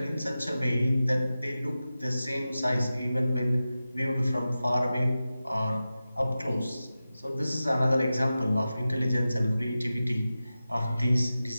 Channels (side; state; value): both; inverted; correlation -0.94